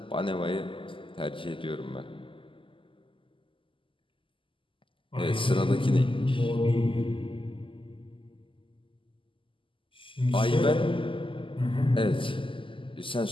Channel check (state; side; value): late; right; 0.25 ms